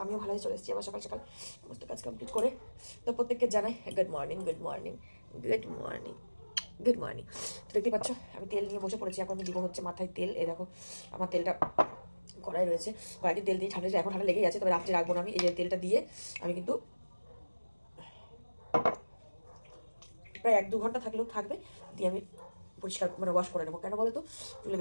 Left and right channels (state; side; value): inverted; both; correlation -1.00